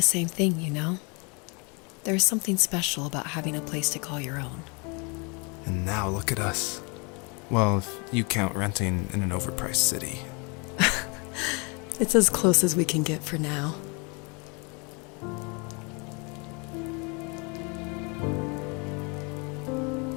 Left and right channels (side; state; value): right; quieter; 31.6 dB